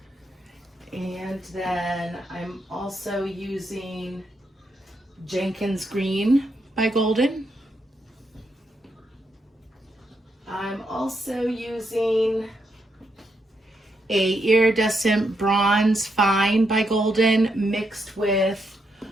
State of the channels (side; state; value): both; normal; correlation 0.81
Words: And then I'm also using Jenkins Green by Golden. I'm also using a Iridescent Bronze Fine by Golden mixed with